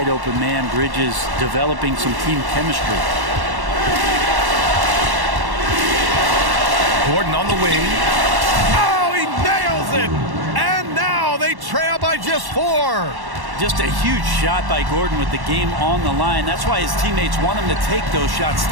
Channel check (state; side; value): late; left; 1.1 ms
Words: open man. Bridges developing some team chemistry. Gordon on the wing. Oh, he nails it! And now they trail by just 4. Just a huge shot by Gordon with the game on the line. That's why his teammates want him to take those shots.